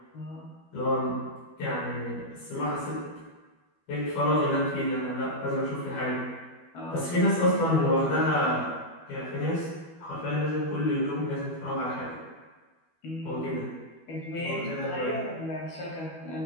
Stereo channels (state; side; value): late; right; 12 ms